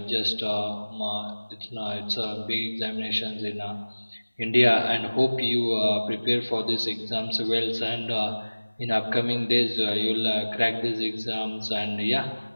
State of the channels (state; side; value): inverted; both; correlation -1.00